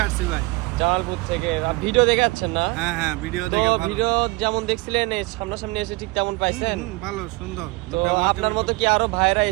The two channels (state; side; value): quieter; left; 23.3 dB